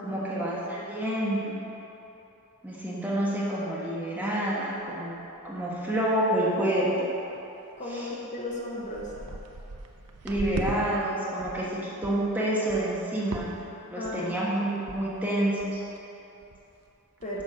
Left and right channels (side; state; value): both; normal; correlation 0.43